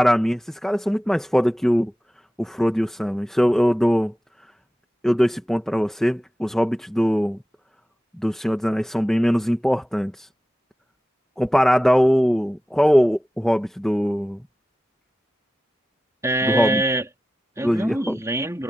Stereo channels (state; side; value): normal; both; correlation 0.94